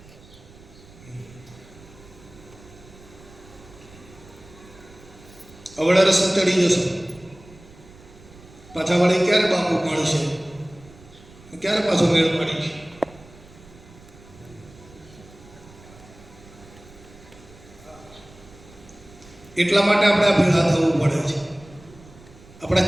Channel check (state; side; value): noise; right; rumble, 22 dB below the sound